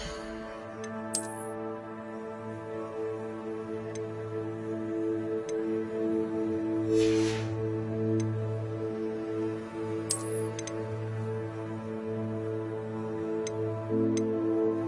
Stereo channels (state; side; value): identical; both; correlation 1.00